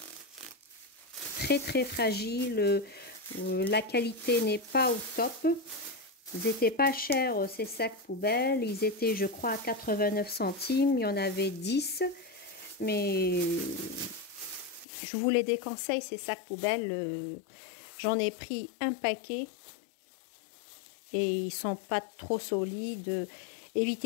très fragile. La qualité n'est pas au top. Ils n'étaient pas chers ces sacs poubelles. Ils étaient, je crois, à 89 centimes. Il y en avait 10. Mais je vous les déconseille, ces sacs poubelles. J'en ai pris un paquet. Et ils sont pas trop solides.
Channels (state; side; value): drops out; right; at 14.9 s